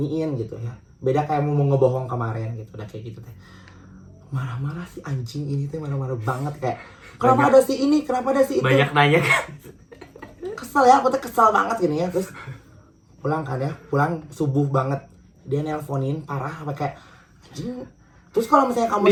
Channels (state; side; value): identical; both; correlation 1.00